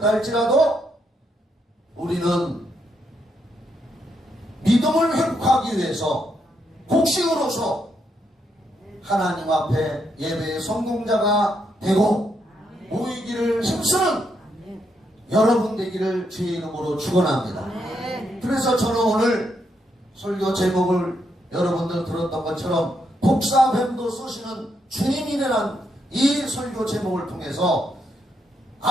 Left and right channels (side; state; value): both; normal; correlation 0.78